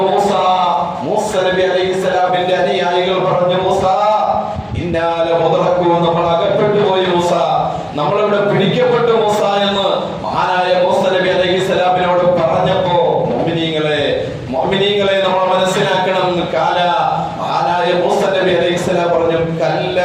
മൂസ നബി അലൈഹിസ്സലാമിന്റെ അനുയായികൾ പറഞ്ഞു, മൂസ ഇന്നാല മുദ്റക്കൂ, നമ്മൾ അകപ്പെട്ടു പോയി മൂസ, നമ്മളിവിടെ പിടിക്കപ്പെട്ടു മൂസ എന്ന് മഹാനായ മൂസ നബി അലൈഹിസ്സലാമിനോട് പറഞ്ഞപ്പോ മുഅ്മിനീങ്ങളെ നമ്മൾ മനസ്സിലാക്കണം. കാല, മഹാനായ മൂസ നബി അലൈഹിസ്സലാം പറഞ്ഞു, കല്ല,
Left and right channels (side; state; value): both; identical; correlation 1.00